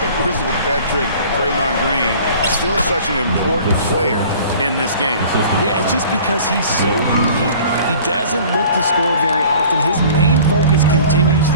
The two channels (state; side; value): inverted; both; correlation -0.47